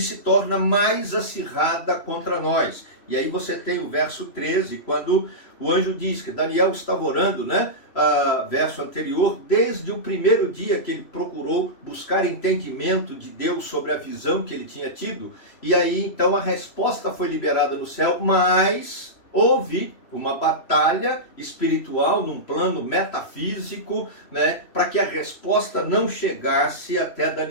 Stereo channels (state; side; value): late; right; 3.1 ms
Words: se torna mais acirrada contra nós. E aí você tem o verso 13, quando o anjo diz que Daniel estava orando, né? Verso anterior, desde o primeiro dia que ele procurou buscar entendimento de Deus sobre a visão que ele tinha tido. E aí então a resposta foi liberada no céu, mas houve uma batalha espiritual num plano metafísico, né, para que a resposta não chegasse até